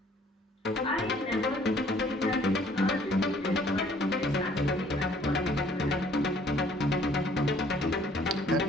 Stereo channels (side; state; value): both; normal; correlation 0.59